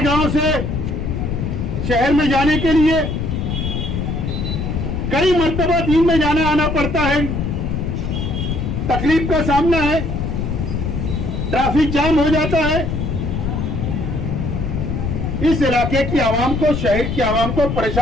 से शहर में जाने के लिए कई मर्तबा दिन में जाना आना पड़ता है, तकलीफ का सामना है, ट्रैफिक जाम हो जाता है। इस इलाके की आवाम को, शहर की आवाम को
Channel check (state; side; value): noise; left; rumble, 2 dB below the sound